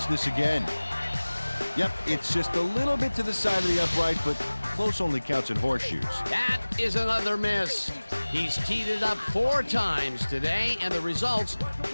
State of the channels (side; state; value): both; inverted; correlation -1.00